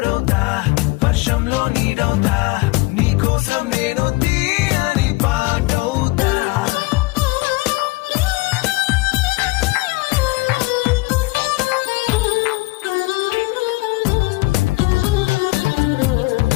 వర్షంలో నీడవుతా, నీ కోసం నేను తీయని పాటవుతా.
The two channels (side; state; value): right; quieter; 23.0 dB